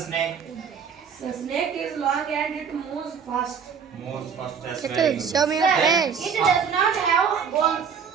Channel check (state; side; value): quieter; left; 6.7 dB